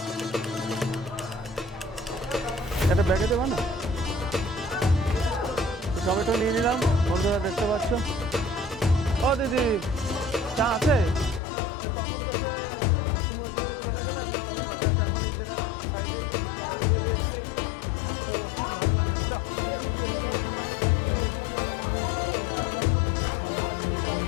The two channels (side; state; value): right; drops out; at 11.4 s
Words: এটা ব্যাগে দেবা না? টমেটো নিয়ে নিলাম, বন্ধুরা দেখতে পাচ্ছ। ও দিদি, চা আছে? তখন তো সে তুমি ওই দিকটা চলে গেলে, আর নেওয়া হলো না। যাক, এখন এই জায়গায় সাইডে নিরিবিলি এসছি তো ভালো লাগে। দাও, এর মধ্যে দাও দাদা, একটু ভালো লাগে, একটু চা